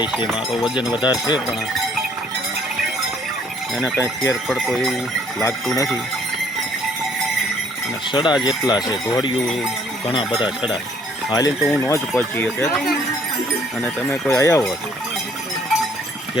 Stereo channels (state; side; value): normal; both; correlation 0.62